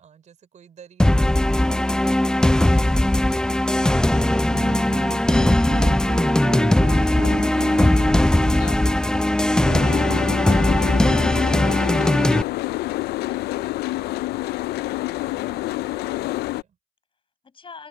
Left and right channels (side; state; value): both; normal; correlation 0.90